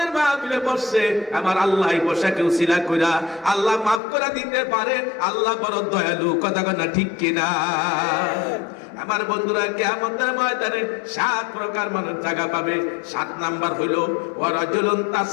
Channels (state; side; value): drops out; right; at 4.0 s